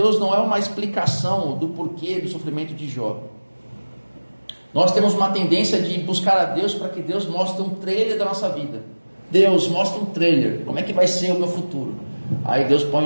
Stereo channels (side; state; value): both; inverted; correlation -1.00